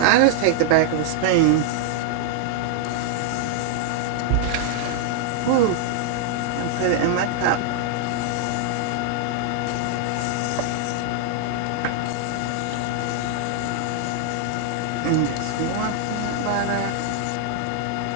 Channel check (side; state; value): both; different; correlation 0.00